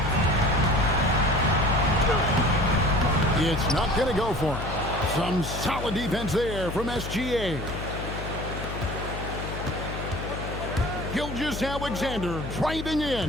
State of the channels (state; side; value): noise; left; hum, 7 dB below the sound